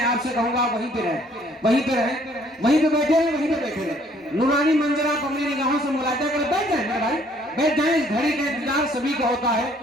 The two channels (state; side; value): normal; both; correlation 0.61